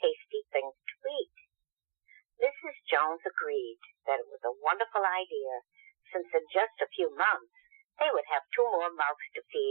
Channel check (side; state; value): left; silent; digital silence